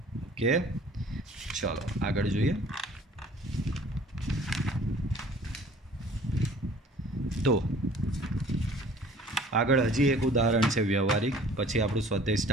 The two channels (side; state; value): both; normal; correlation 0.51